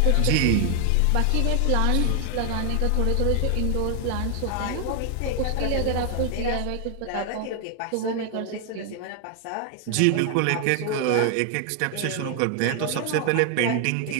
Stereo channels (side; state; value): both; different; correlation 0.00